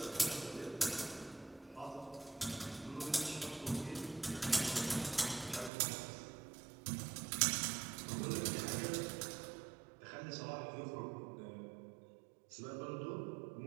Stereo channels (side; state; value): left; drops out; at 5.7 s